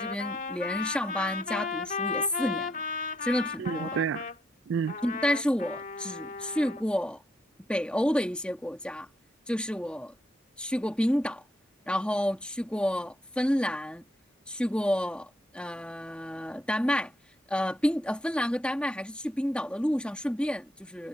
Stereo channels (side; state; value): both; normal; correlation 0.75